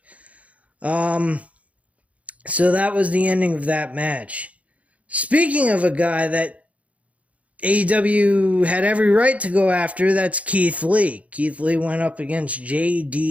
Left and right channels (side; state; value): left; late; 0.066 ms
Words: So that was the ending of that match. Speaking of a guy that AEW had every right to go after, that's Keith Lee. Keith Lee went up against